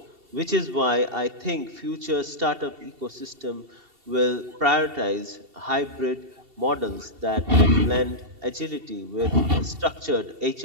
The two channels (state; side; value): late; left; 2.7 ms